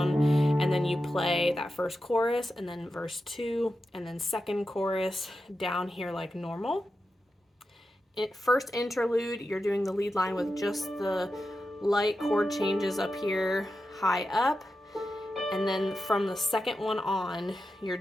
and then you play that first chorus and then verse 2 and then second chorus down here like normal. First interlude, you're doing the lead line with just the light chord changes up here high up, and then from the second one on, you're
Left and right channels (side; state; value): both; normal; correlation 0.90